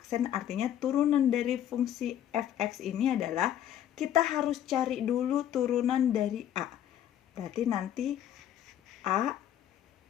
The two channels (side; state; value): right; quieter; 10.8 dB